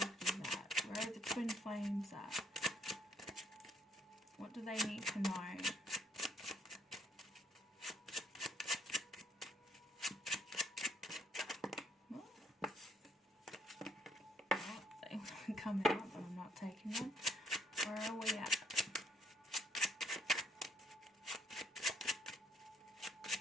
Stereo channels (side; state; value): both; normal; correlation 0.68